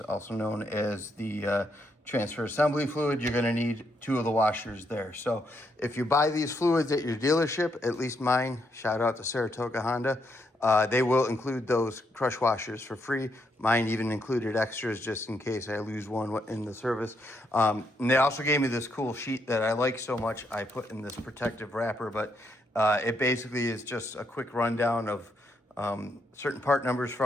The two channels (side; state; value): both; normal; correlation 0.77